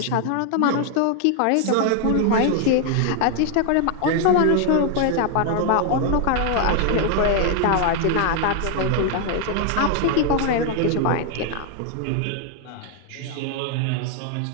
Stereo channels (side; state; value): both; different; correlation 0.00